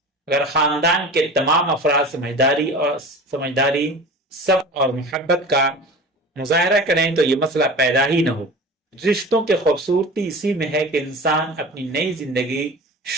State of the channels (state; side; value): normal; both; correlation 0.36